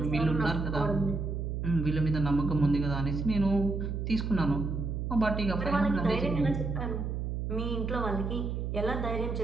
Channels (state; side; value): noise; right; hum, 3 dB below the sound